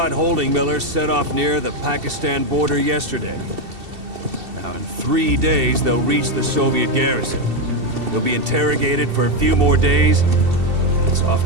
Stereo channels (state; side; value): late; left; 2.7 ms